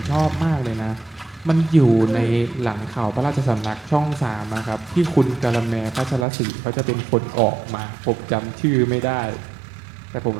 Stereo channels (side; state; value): left; drops out; at 6.2 s